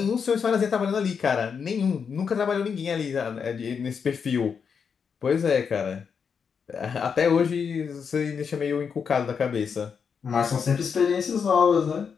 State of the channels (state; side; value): quieter; right; 6.4 dB